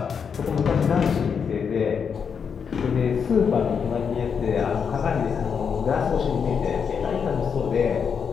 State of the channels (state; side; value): quieter; right; 6.6 dB